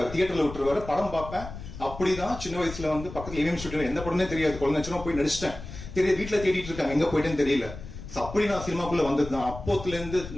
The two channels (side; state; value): left; noise; rumble, 12 dB below the sound